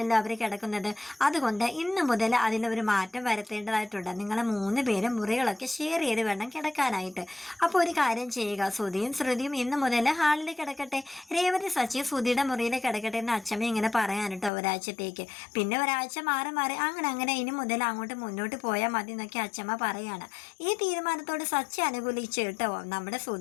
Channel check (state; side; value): drops out; right; at 14.5 s